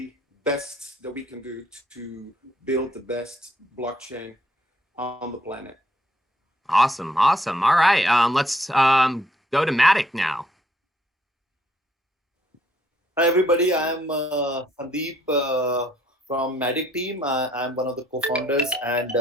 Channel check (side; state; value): both; normal; correlation 0.68